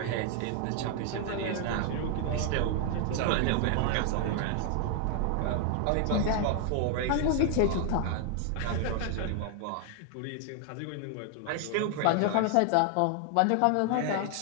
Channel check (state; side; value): different; both; correlation 0.00